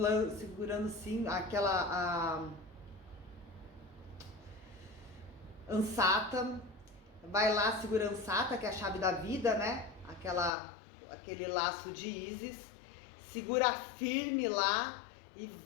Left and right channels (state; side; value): drops out; right; at 10.5 s